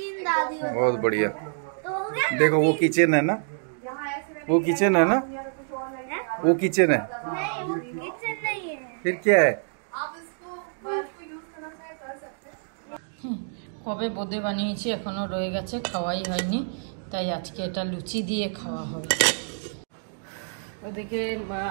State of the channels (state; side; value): silent; left; digital silence